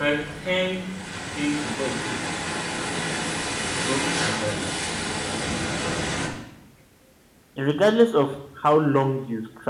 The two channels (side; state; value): both; identical; correlation 1.00